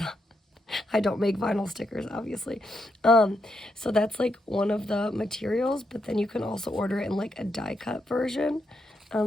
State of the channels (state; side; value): normal; both; correlation 0.81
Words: I don't make vinyl stickers, obviously. So that's like one of the materials, but then you can also order it in like a die cut version.